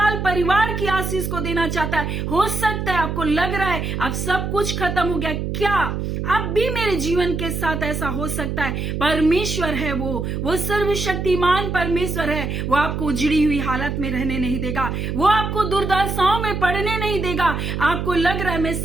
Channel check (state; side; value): noise; right; hum, 3 dB below the sound